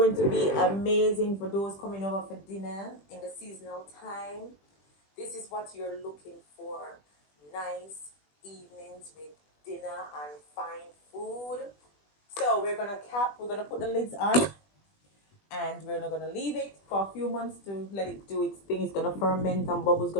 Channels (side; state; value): right; late; 20 ms